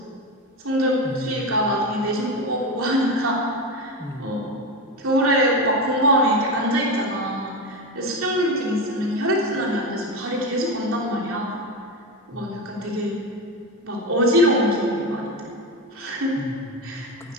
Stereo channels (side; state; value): both; normal; correlation 0.18